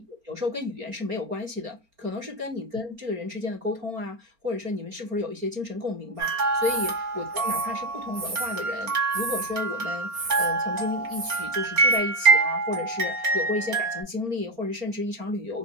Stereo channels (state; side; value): late; left; 4.4 ms